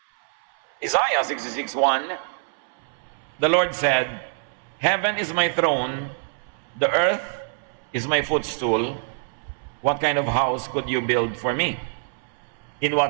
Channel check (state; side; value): silent; left; 62 dB below the other